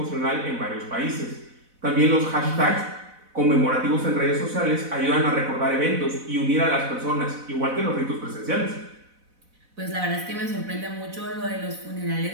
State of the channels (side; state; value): left; late; 4.0 ms